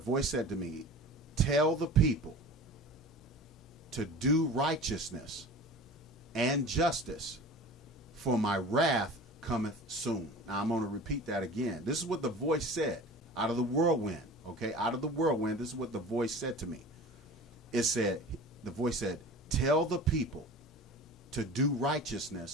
said to me, "Tell the people to do righteousness and justice, for my wrath cometh soon." Now, I'm going to repeat that again. This is what the voice said out of the whirlwind. Okay, out of the whirlwind, this is what the voice said to me. The voice said, "Tell the people to do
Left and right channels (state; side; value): normal; both; correlation 0.38